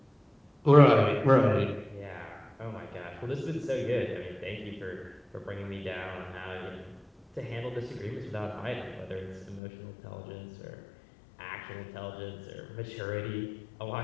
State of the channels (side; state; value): right; drops out; at 9.6 s